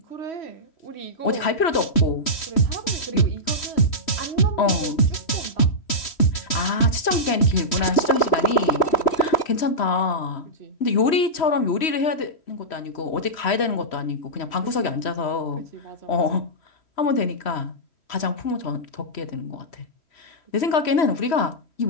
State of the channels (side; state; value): right; late; 3.1 ms